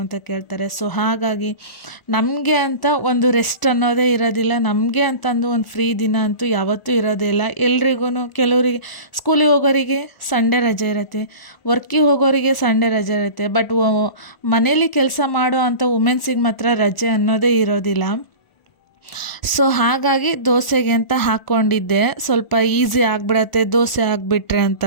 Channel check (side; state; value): right; late; 1.4 ms